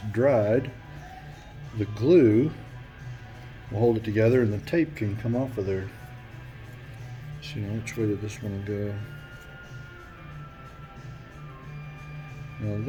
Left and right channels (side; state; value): both; identical; correlation 1.00